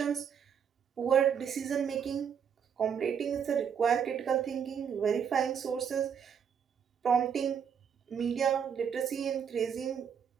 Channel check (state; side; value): quieter; left; 7.5 dB